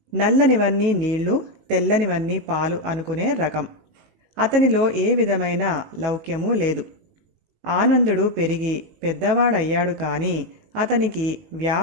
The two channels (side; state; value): left; late; 19 ms